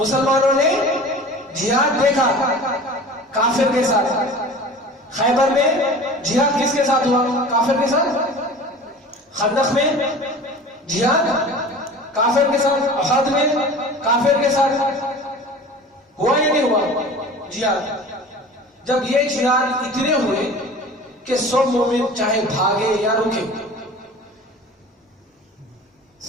نے جہاد دیکھا کافر کے ساتھ۔ خیبر میں جہاد کس کے ساتھ ہوا؟ کافر کے ساتھ۔ خندق میں جہاد کافر کے ساتھ، احد میں کافر کے ساتھ ہوا یا نہیں ہوا جہاد؟ جب یہ جہاد اتنے ہوئے کہ سب مومن چاہے بھاگے یا رکے،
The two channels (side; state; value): both; normal; correlation 0.40